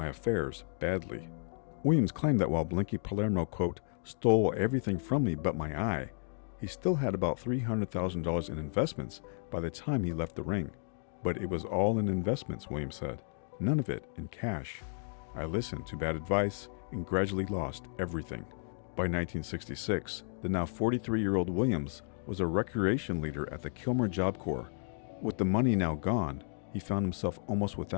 affairs badly." Williams claimed that while Blinky Palermo, quote, "stole everything from me but my eye," he still had about $300,000 in investments by the time he left the ring. "But it was all in investments," Williams said, "none of it in cash. I listened to bad advice and gradually lost everything." By 1966, the now 43-year-old Williams was a recreation leader at the Kilmer Job Corps. With the money now gone, he found himself almost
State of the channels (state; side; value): silent; right; digital silence